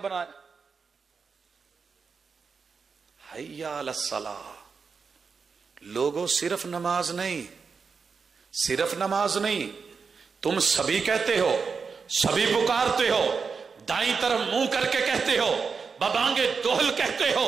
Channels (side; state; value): left; quieter; 5.4 dB